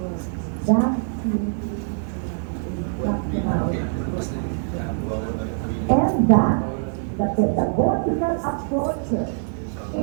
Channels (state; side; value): silent; left; digital silence